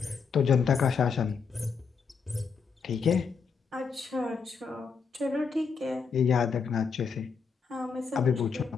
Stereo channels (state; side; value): quieter; right; 5.7 dB